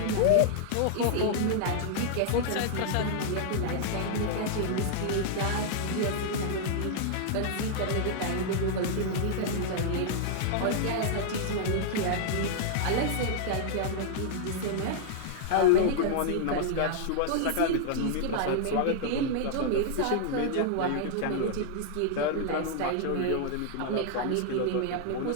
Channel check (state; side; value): different; both; correlation -0.01